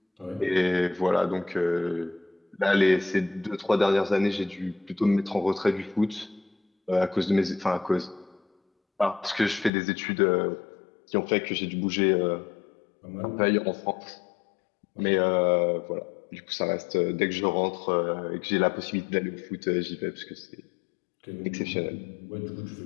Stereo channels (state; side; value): drops out; right; at 9.7 s